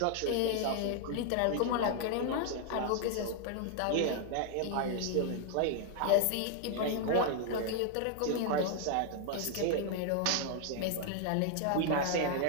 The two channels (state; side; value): different; both; correlation 0.00